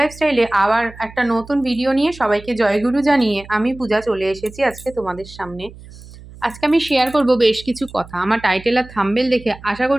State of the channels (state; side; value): noise; right; hum, 18 dB below the sound